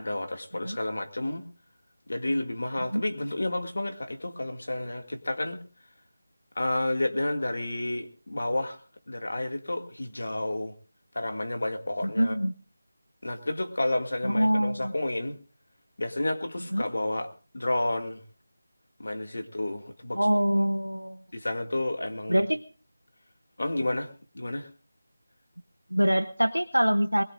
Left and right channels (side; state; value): both; inverted; correlation -0.99